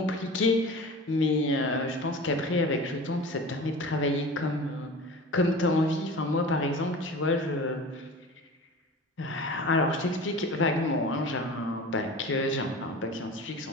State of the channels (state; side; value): normal; both; correlation 0.36